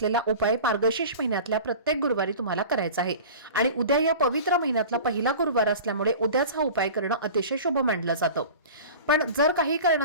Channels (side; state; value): both; inverted; correlation -0.37